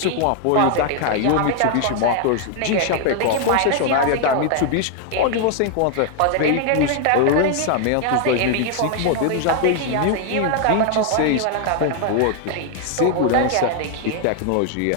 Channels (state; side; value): different; both; correlation 0.00